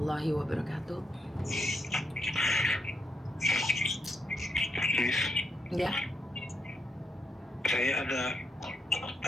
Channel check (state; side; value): normal; both; correlation 0.79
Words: wabarakatuh. Miss, Ya, saya ada